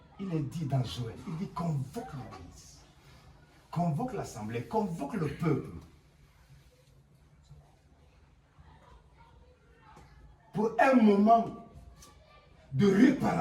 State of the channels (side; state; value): both; identical; correlation 1.00